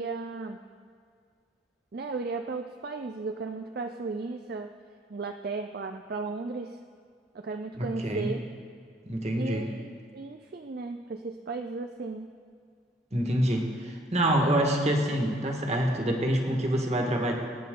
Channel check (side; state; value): both; normal; correlation 0.61